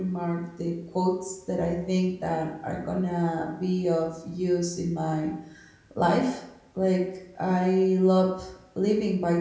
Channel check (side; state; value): both; identical; correlation 1.00